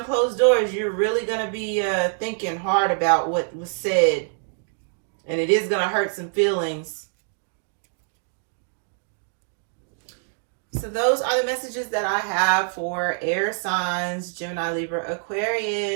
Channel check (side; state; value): left; silent; 62 dB below the other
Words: closed doors, you're really going to be thinking hard about what was said, and it is going to hurt some feelings. So those are the messages that I have for air signs, Gemini, Libra,